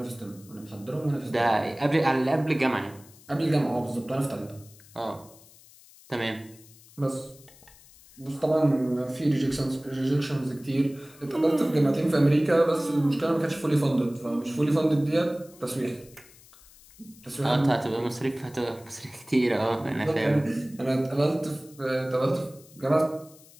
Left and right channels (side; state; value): left; noise; hiss, 24 dB below the sound